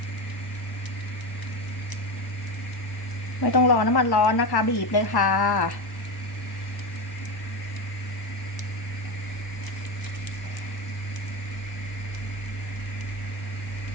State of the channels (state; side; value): late; right; 1.1 ms